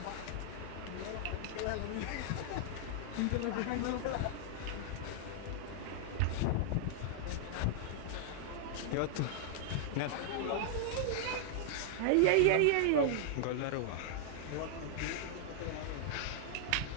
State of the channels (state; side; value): different; both; correlation -0.01